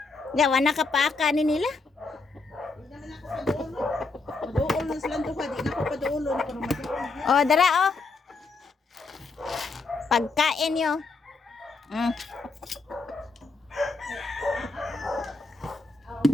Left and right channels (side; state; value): right; quieter; 3.9 dB